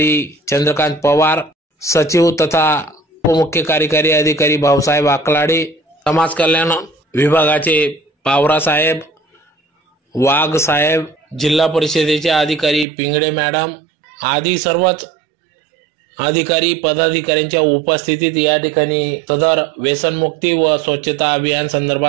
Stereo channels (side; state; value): left; drops out; at 12.9 s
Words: चंद्रकांत पवार, सचिव तथा उपमुख्य कार्यकारी अधिकारी भाऊसाहेब आकलाडे, समाज कल्याण विभागाचे पावरा साहेब, वाघ साहेब, जिल्हा परिषदेचे अधिकारी पिंगळे मॅडम आदी सर्वच अधिकारी पदाधिकाऱ्यांच्या उपस्थितीत या ठिकाणी सदर व्यसनमुक्ती व स्वच्छता अभियान